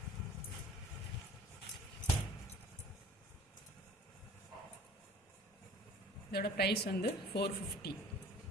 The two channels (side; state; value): both; normal; correlation 0.47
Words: இதோட ப்ரைஸ் வந்து $450.